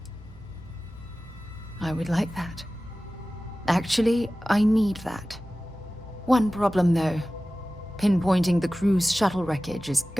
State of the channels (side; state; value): both; normal; correlation 0.96